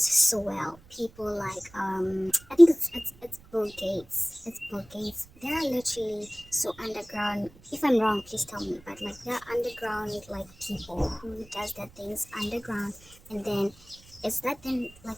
so well. People like I think it's Bill Gates. It's Bill Gates. They're literally so underground. If I'm wrong, please tell me. But like they're underground like people who does their things underground, and then it's that then like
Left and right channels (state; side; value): noise; right; rumble, 24 dB below the sound